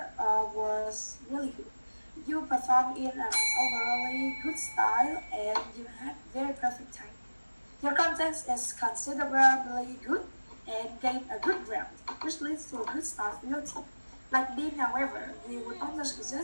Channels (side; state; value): both; inverted; correlation -1.00